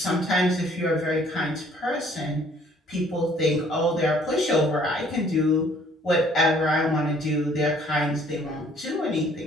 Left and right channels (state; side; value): normal; both; correlation 0.59